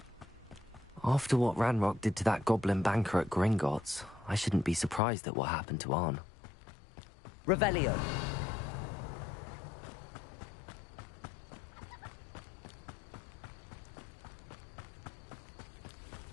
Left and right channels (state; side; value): drops out; right; at 5.0 s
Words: After what Ranrock did to that goblin banker at Gringotts, I shouldn't be surprised at what happened to Arn. Revelio.